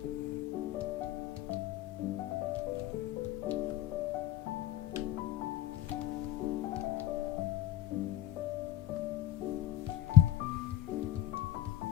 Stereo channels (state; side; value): quieter; right; 12.6 dB